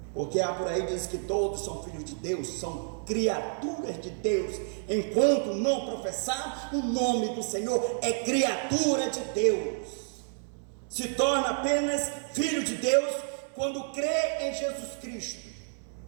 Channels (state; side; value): silent; left; 58 dB below the other